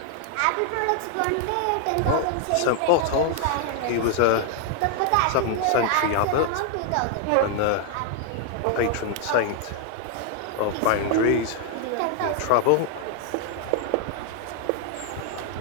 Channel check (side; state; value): both; different; correlation 0.00